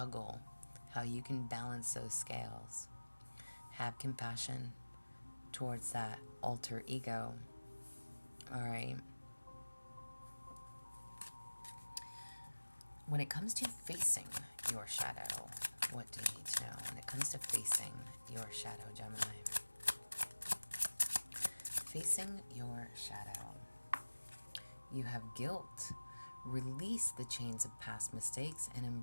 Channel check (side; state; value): both; inverted; correlation -1.00